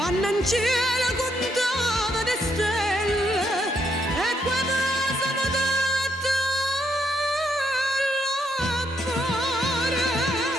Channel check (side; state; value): both; normal; correlation 0.76